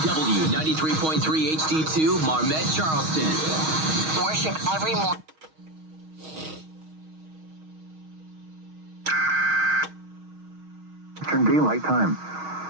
93.3 HD2 Marmet, Charleston. Worship every morning. Eastern Daylight Time.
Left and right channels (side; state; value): left; late; 6.4 ms